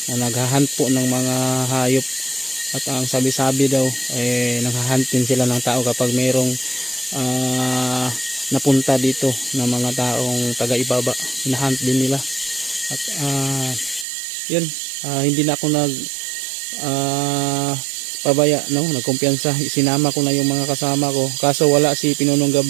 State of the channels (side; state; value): left; drops out; at 14.1 s